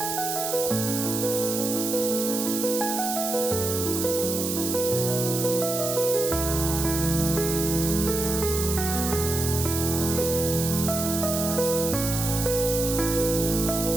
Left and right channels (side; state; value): right; noise; hiss, 3 dB below the sound